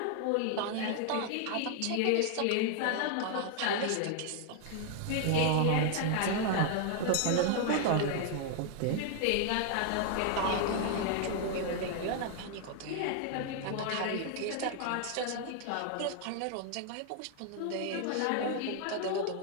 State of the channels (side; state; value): both; different; correlation 0.00